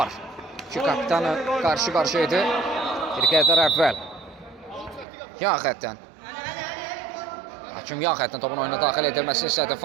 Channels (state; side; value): drops out; left; at 5.1 s